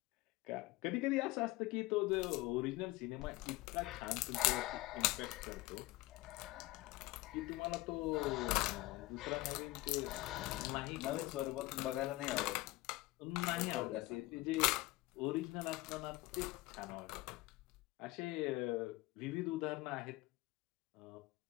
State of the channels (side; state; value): right; quieter; 19.8 dB